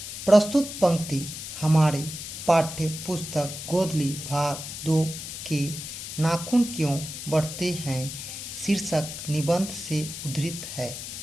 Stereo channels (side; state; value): left; noise; hiss, 8 dB below the sound